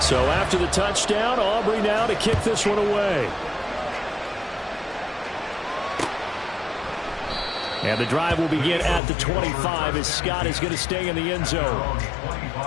So after the touchdown, Aubrey now to kick this one away. And the drive will begin at the 25 as Scott is going to stay in the end zone.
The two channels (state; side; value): drops out; right; at 9.0 s